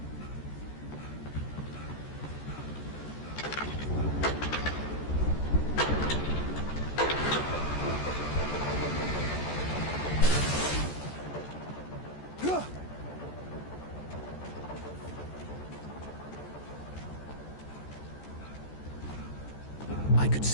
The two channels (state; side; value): late; right; 14 ms